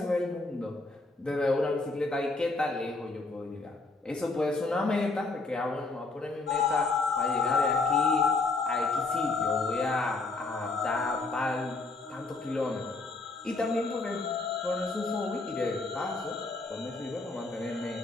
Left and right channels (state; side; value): quieter; right; 3.5 dB